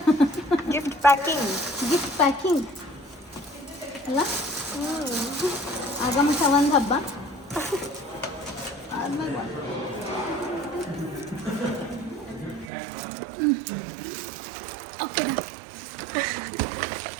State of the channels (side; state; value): left; drops out; at 12.7 s